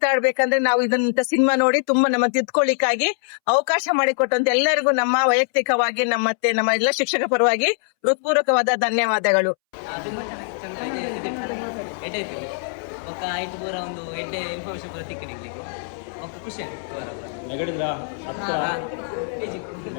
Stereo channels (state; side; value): silent; right; 64 dB below the other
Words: ನಾವು ಇದನ್ನ ಸಿನಿಮಾ ನೋಡಿ ತುಂಬಾ ನಮ್ಮ ತಿದ್ಕೊಳ್ಳಿಕ್ಕಾಗಿ ಅವಕಾಶ ಮಾಡಿಕೊಟ್ಟಂತ ಎಲ್ಲರಿಗೂ ನಮ್ಮ ವೈಯಕ್ತಿಕವಾಗಿ ನಮ್ಮ ಎಲ್ಲ ಶಿಕ್ಷಕ ಪರವಾಗಿ ಹೃತ್ಪೂರ್ವಕವಾದ ಧನ್ಯವಾದಗಳು. ఒక ఐదు పూర ಒಂದು ಎಡ್ಡೆ ಇನ್ಫಾರ್ಮೇಶನ್ ಪೂರ ತಿಕ್ಕಿನಿಗೆ ఒక ಖುಷಿ ಆಯ್ತು. ನೆಗಡಿದ್ರಾ ಹತ್ರ ಪೇಜಿ